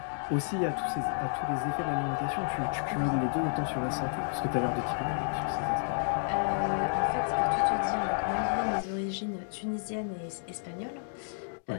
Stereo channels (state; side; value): silent; right; digital silence